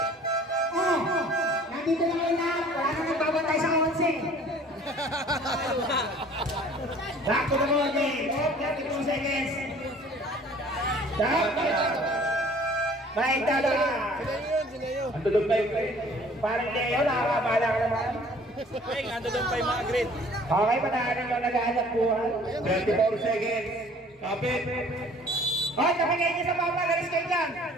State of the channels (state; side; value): normal; both; correlation 0.52